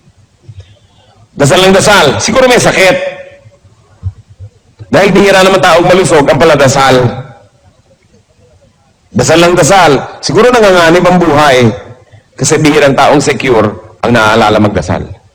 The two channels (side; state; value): both; identical; correlation 1.00